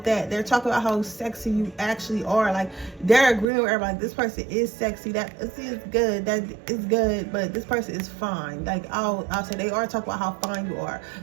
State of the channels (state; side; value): drops out; left; at 3.5 s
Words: that. They're talking about how sexy you actually are. Like, they're agreeing with everybody, this person is sexy, that is good, that is good, but this person is fine. Like, I'll say they are talking about how fine you are,